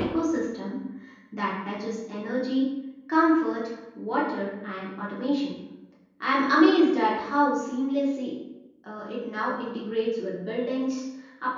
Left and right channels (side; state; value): both; identical; correlation 1.00